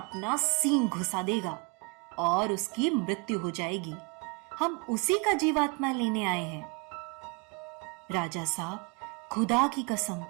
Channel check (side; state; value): left; quieter; 29.7 dB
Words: सींग घुसा देगा और उसकी मृत्यु हो जाएगी। हम उसी का जीवात्मा लेने आए हैं। राजा साहब, खुदा की कसम,